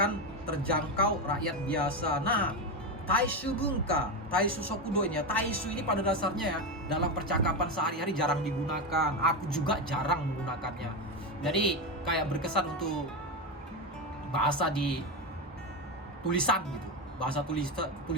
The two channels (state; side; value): normal; both; correlation 0.14